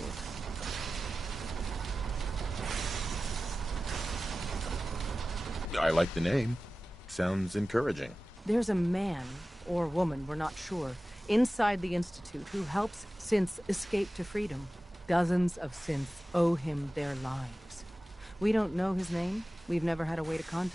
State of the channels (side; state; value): both; normal; correlation 0.96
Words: I like the name. Sounds encouraging. There's a man, or woman, we're not sure, inside the Institute who helps synths escape to freedom. Dozens of synths owe him their lives. We don't know his name. We've never had a way to